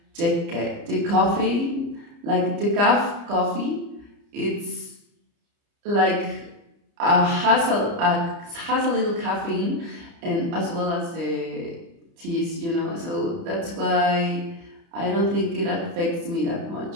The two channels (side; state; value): left; late; 30 ms